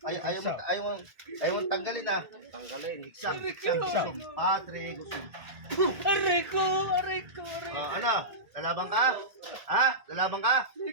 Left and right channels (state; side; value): late; left; 1.8 ms